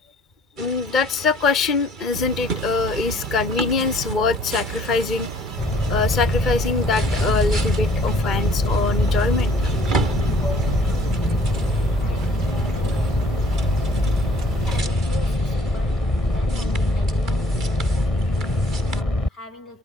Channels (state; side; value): normal; both; correlation 0.58